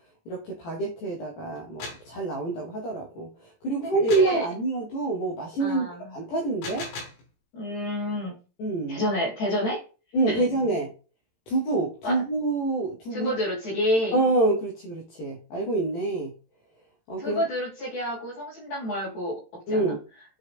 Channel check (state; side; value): late; right; 18 ms